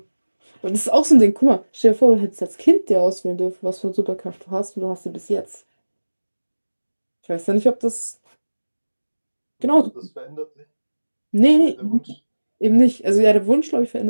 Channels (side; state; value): both; inverted; correlation -1.00